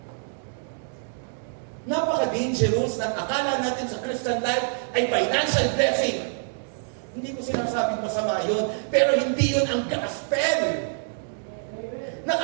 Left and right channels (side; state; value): left; silent; digital silence